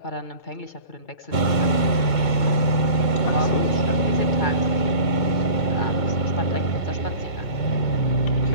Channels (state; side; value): late; right; 2.2 ms